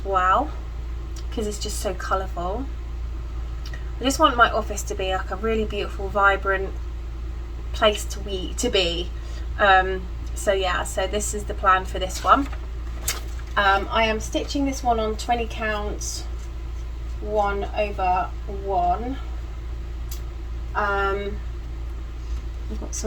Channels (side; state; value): both; identical; correlation 1.00